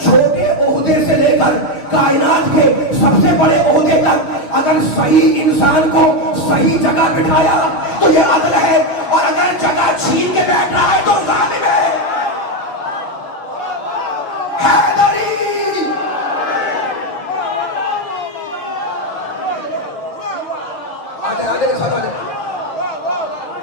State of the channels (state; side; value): late; right; 6.7 ms